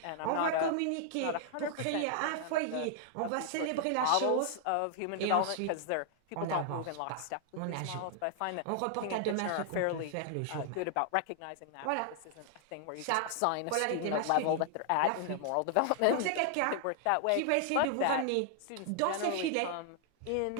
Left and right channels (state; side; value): different; both; correlation 0.00